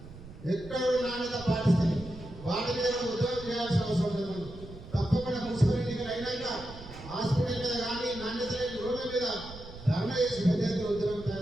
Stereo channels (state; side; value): noise; right; rumble, 15 dB below the sound